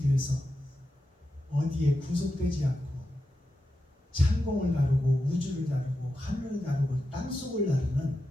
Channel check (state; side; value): normal; both; correlation 0.89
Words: 어디에 구속되지 않고 창공을 다루고 우주를 다루고 하늘을 다루고 땅속을 다루는